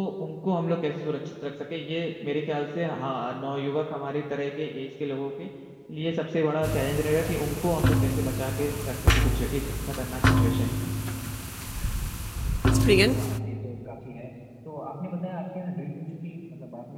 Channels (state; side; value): identical; both; correlation 1.00